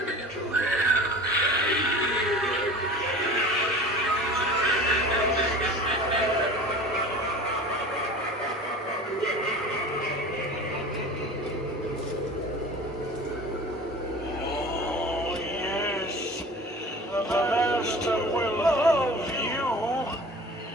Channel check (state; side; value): normal; both; correlation 0.39